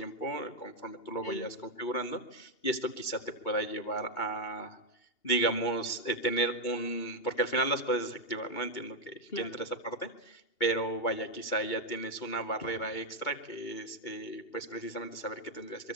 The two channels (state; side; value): late; right; 2.8 ms